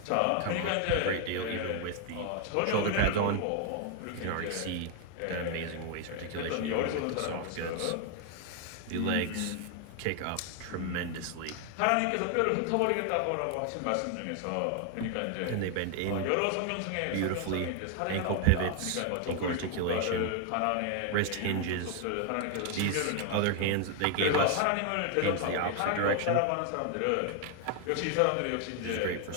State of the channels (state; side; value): different; both; correlation 0.00